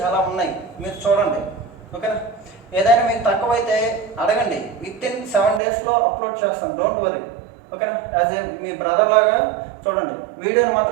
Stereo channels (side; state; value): left; drops out; at 5.6 s